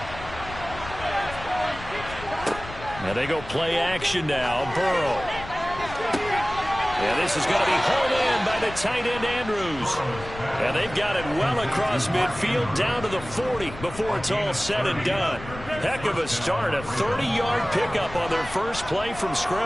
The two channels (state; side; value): noise; left; rumble, 13 dB below the sound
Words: Now they go play action now. Burrow. And this is going to be hauled in by the tight end Andrews. And they've got it well across midfield down to the 40 before it's all said and done. Heck of a start. A 30-yard pickup on their first play from